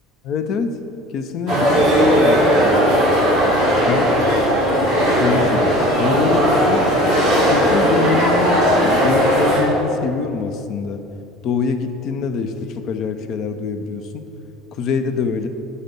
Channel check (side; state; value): both; normal; correlation 0.44